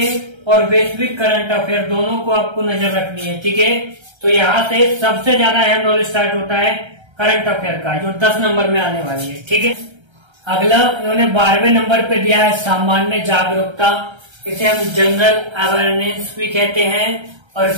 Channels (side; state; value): left; late; 1.3 ms